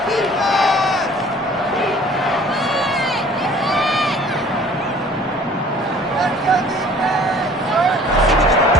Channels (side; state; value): both; normal; correlation 0.51